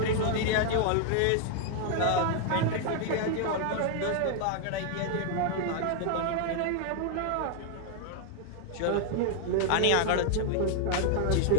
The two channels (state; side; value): different; both; correlation 0.00